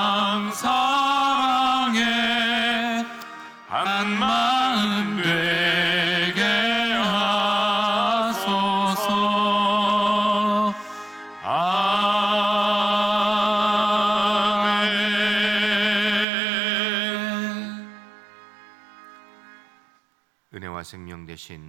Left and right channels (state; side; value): drops out; left; at 16.2 s